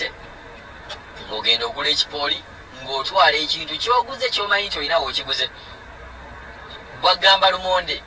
ng'ogenda ogula ekipooli ng'otwala ekintu ky'oguze ky'omanyi nti olina w'okiguze. Bw'agamba lumonde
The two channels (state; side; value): identical; both; correlation 1.00